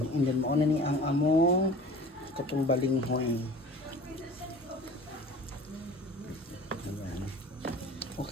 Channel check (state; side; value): normal; both; correlation 0.42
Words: And then mauna ni ang among katong balinghoy. Ayan.